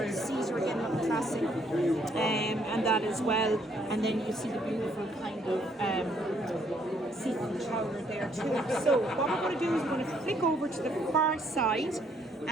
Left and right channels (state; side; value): normal; both; correlation 0.68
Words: Caesar again, not classic, and that as well. And then you see the beautiful kind of seafood chowder there too. So what we're going to do is we're going to flick over to the far side,